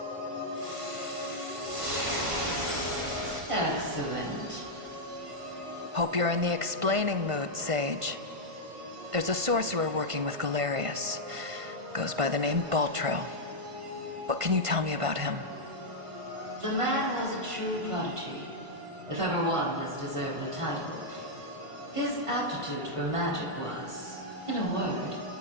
Excellent. Hope you're in the explaining mood, Sage. There's a sorcerer working with Garius. Goes by the name Baltro. What can you tell me about him? The man was a true prodigy, if ever one has deserved the title. His aptitude for magic was, in a word,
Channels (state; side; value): late; left; 1.5 ms